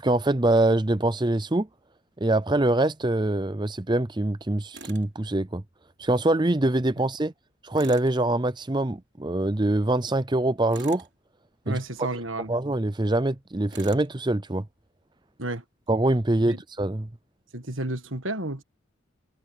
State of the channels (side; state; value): both; normal; correlation 0.72